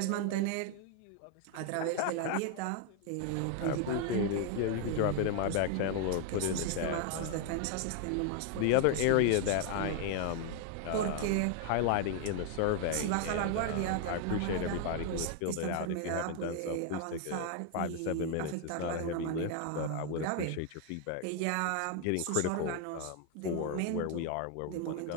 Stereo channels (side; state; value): both; different; correlation 0.00